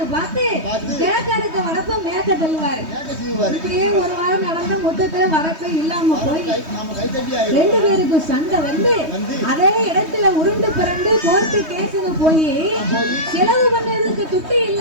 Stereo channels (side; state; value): left; late; 3.2 ms